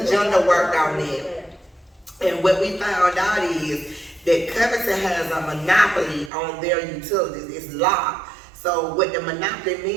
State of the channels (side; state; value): left; drops out; at 6.3 s